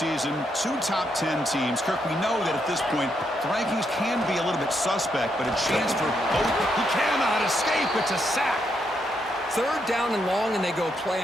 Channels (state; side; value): normal; both; correlation 0.78